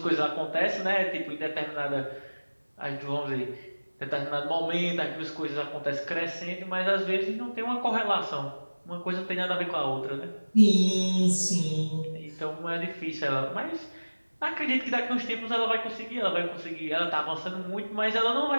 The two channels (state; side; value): inverted; both; correlation -1.00